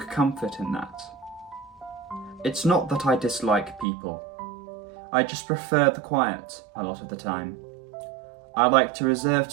comfort in that. It's not that I dislike people. I just prefer the quiet a lot of the time. I like to reserve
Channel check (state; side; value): drops out; left; at 3.9 s